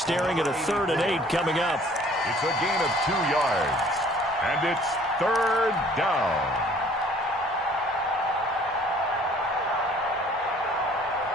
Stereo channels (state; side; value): normal; both; correlation 0.55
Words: at a 3rd and 8 coming up. It's a gain of 2 yards, and it's 3rd down.